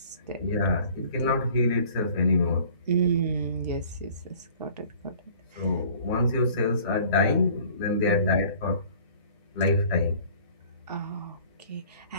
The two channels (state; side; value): inverted; both; correlation -0.51